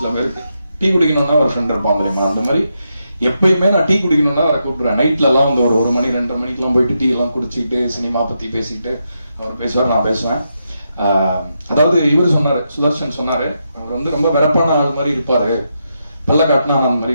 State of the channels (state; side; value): inverted; both; correlation -0.84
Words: பேருக்கு, டீ குடிக்கணும்னா ஒரு ஃப்ரெண்ட் இருப்பாங்க தெரியுமா, அந்த மாதிரி எப்பயுமே நான் டீ குடிக்கணும்னா அவரை கூப்பிடுறேன். நைட்ல எல்லாம் வந்து ஒரு 1 மணி 2:30 மணிக்கெல்லாம் போயிட்டு டீ எல்லாம் குடிச்சிட்டு சினிமா பத்தி பேசிட்டு அவர் பேசுவார், நான் பேசுவேன். அதாவது இவர் சொன்னாரு, சுதர்ஷன் சொன்னாரு, அவர் வந்து ரொம்ப வெறப்பான ஆள் மாதிரி இருப்பாரு, பல்ல காட்டினா அந்த மாதிரி